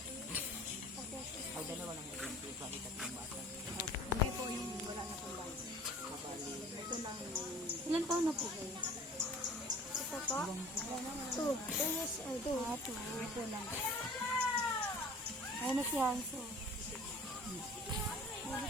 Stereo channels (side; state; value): both; normal; correlation 0.46